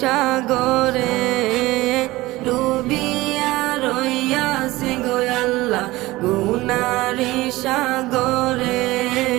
সাগরে ডুবিয়া রইয়াছি গো আল্লাহ গুনারি সাগরে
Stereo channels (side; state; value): left; quieter; 19.1 dB